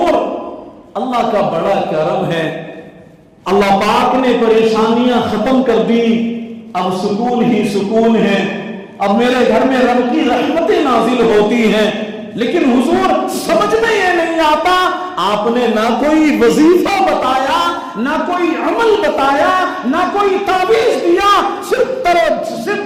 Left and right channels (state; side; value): identical; both; correlation 1.00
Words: اللہ کا بڑا کرم ہے، اللہ پاک نے پریشانیاں ختم کر دی، اب سکون ہی سکون ہے، اب میرے گھر میں رب کی رحمتیں نازل ہوتی ہیں۔ لیکن حضور سمجھ میں یہ نہیں آتا، آپ نے نہ کوئی وظیفہ بتایا، نہ کوئی عمل بتایا، نہ کوئی تعویذ دیا، صرف